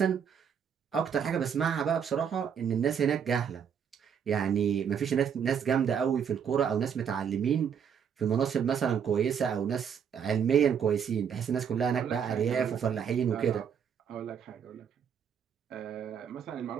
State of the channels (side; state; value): left; quieter; 7.7 dB